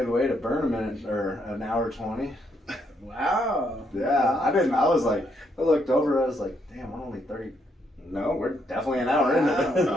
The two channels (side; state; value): both; normal; correlation 0.75